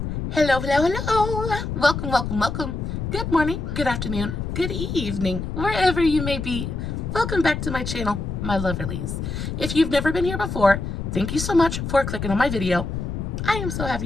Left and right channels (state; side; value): noise; left; rumble, 4 dB below the sound